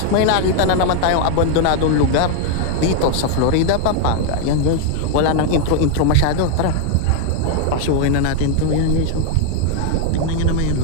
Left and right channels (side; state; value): both; different; correlation 0.00